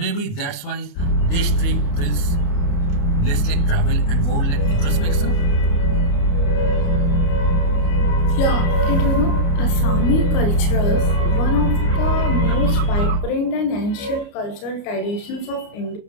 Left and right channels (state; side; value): late; right; 29 ms